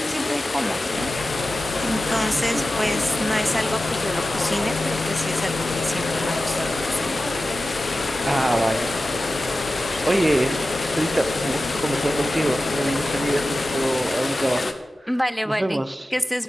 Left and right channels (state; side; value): normal; both; correlation 0.94